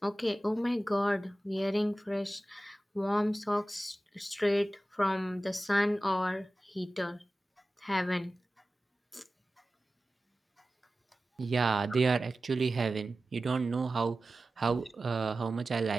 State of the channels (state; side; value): normal; both; correlation 0.95